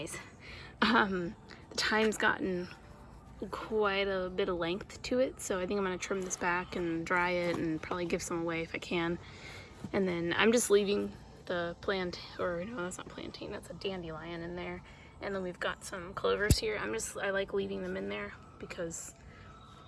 the thyme's gotten quite a bit of length to it, so I think I'm gonna trim this back and dry it and probably give some away if I can. And then I'm just leaving the plant, or no, that's not plantain, that's a dandelion in there. And then we've got some clovers here. I like leaving them in there because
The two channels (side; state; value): both; identical; correlation 1.00